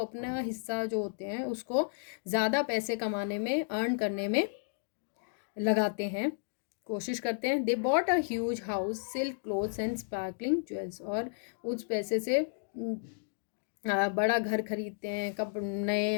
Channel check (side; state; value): right; silent; digital silence